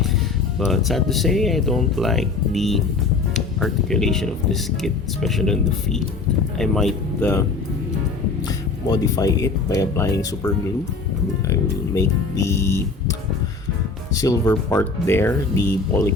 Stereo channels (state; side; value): quieter; right; 4.1 dB